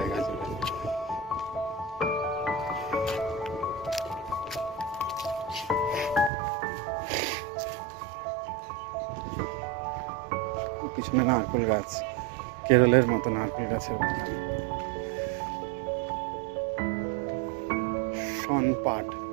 জুড়ে। পিছনে নারকেল গাছ, কেরলের মতো নারকেল গাছের বাগান। শন পাট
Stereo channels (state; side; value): drops out; left; at 6.3 s